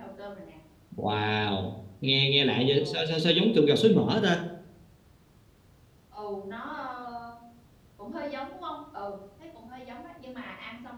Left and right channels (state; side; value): identical; both; correlation 1.00